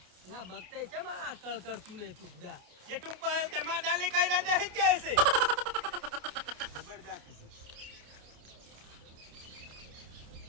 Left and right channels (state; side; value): late; left; 28 ms